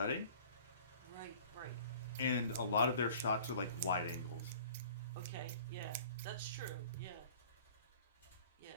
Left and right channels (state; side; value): inverted; both; correlation -0.47